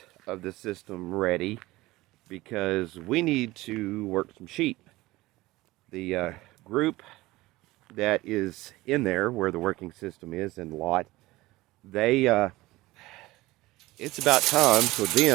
of the system ready because we need to work some sheep. The group that is in there where the working system is in the lot, it's about time for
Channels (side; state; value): left; quieter; 19.1 dB